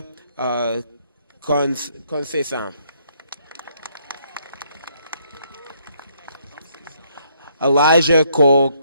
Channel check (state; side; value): inverted; both; correlation -0.69